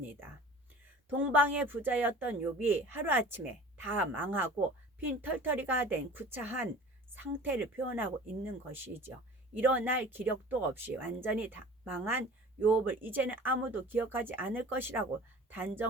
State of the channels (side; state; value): both; normal; correlation 0.43